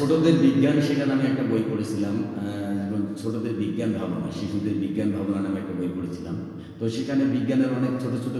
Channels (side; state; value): both; identical; correlation 1.00